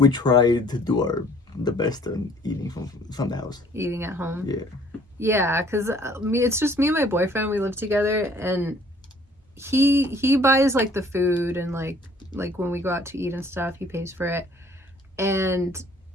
try to do the best on eating from the house. Eating at home. Yeah. Yeah, because it's just me and my boyfriend. We live together, and he buys like the food, and like when we go out to eat and stuff, he pays for it. And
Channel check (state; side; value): normal; both; correlation 0.57